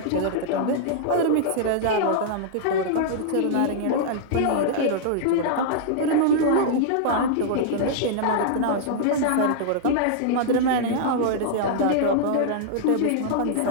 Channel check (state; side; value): different; both; correlation -0.01